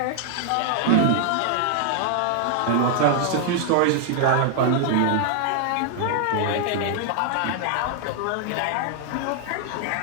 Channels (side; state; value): both; different; correlation 0.00